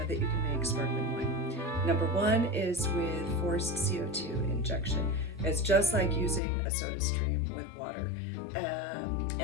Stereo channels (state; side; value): drops out; right; at 6.4 s